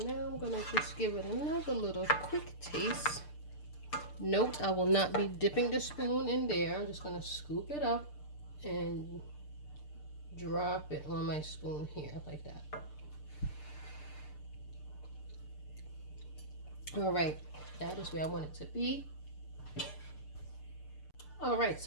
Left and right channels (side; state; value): right; late; 6.7 ms